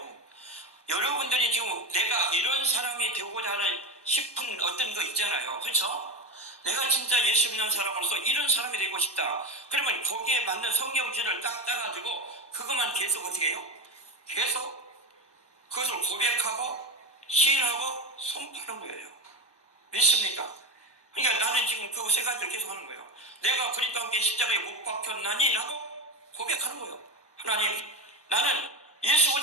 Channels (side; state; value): right; late; 1.1 ms